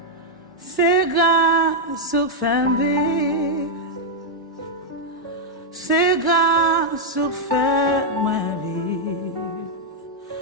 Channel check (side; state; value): both; normal; correlation -0.02